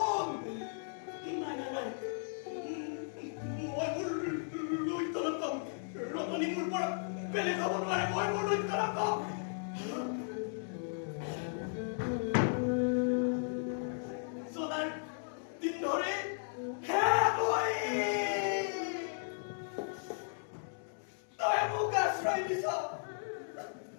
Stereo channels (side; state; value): right; silent; digital silence